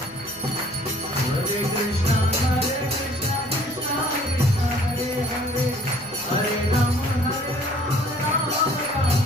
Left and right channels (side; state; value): left; noise; hum, 27 dB below the sound